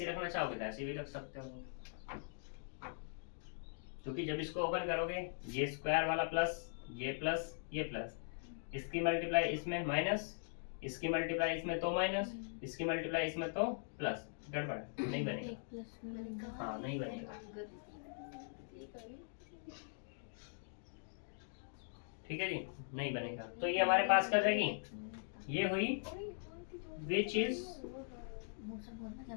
रखना चाहोगे तो ऐसी भी रख सकते हो, क्योंकि जब इसको ओपन करोगे ये स्क्वायर वाला प्लस ये प्लस, इसकी मल्टीप्लाई इसमें माइनस, इसकी मल्टीप्लाई इसमें तो माइनस, इसकी मल्टीप्लाई इसमें तो प्लस, गड़बड़ है, नहीं बनेगा, हाँ नहीं बनेगा। ठीक है जी, नहीं बनेगा। तो ये हमारे पास क्या जाएगी, ये हुई विच इज,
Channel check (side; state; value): right; silent; digital silence